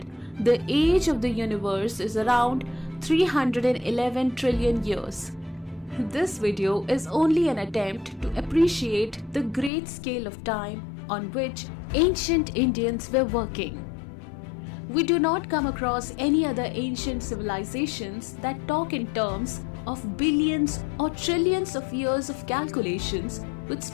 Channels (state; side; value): drops out; right; at 9.7 s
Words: the age of the universe is around 311 trillion years. This video is only an attempt to appreciate the great scale of time on which ancient Indians were working. We do not come across any other ancient civilizations that talk in terms of billions or trillions of years of calculations with